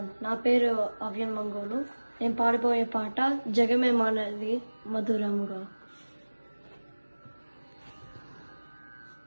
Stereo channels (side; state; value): both; inverted; correlation -1.00